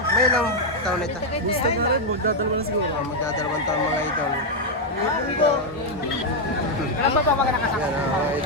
May ilang taon ito? Magdadalawa na siguro. Magdadalawang taon mga idol. Alam ba mga nakasama? Yan mga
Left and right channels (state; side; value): normal; both; correlation 0.00